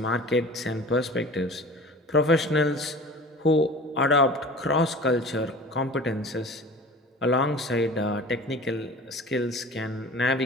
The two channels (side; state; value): both; normal; correlation 0.40